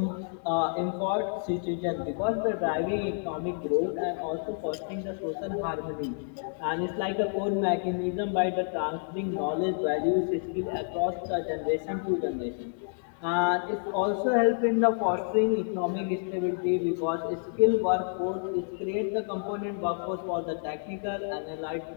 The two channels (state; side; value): silent; right; digital silence